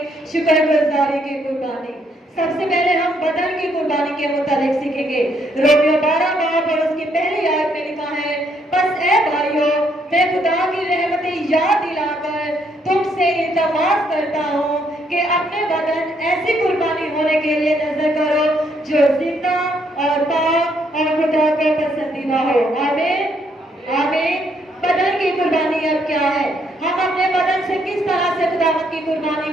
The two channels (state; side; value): normal; both; correlation 0.71